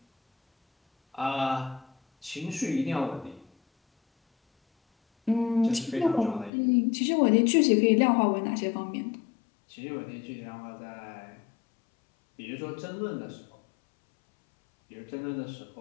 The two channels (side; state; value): right; drops out; at 6.5 s